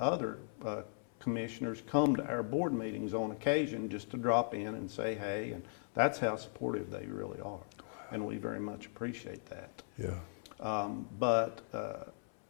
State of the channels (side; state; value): right; silent; 52 dB below the other